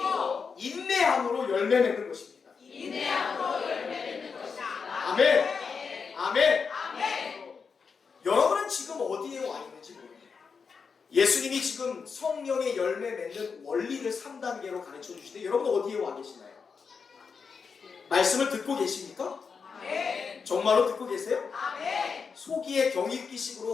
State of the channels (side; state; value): right; quieter; 5.6 dB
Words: 인내함으로 열매 맺는 것입니다. 아멘. 아멘. 여러분은 지금 어디에 와 있는지 모릅니다. 예수님이 지금 성령의 열매 맺는 원리를 3단계로 가르쳐 주시는데 여러분 어디에 와 계시나요? 말씀을 듣고 계십니까? 정말로 듣고 계세요? 소기의